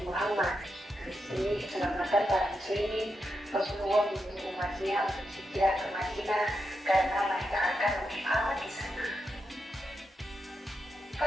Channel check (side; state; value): both; normal; correlation 0.85